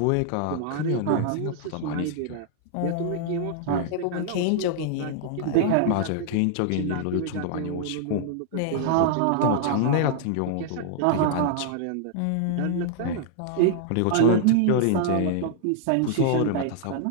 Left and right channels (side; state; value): both; different; correlation -0.01